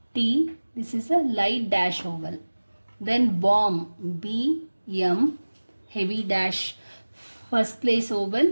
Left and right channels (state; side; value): inverted; both; correlation -1.00